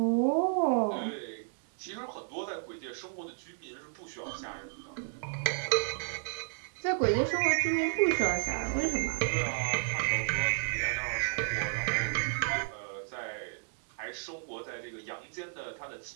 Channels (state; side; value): silent; left; digital silence